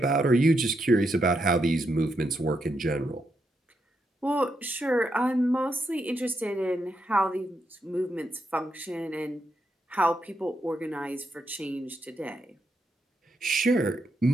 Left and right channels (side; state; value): both; normal; correlation 0.81